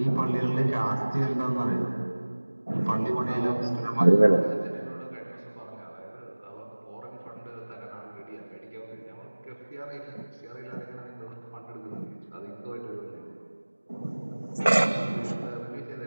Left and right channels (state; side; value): inverted; both; correlation -1.00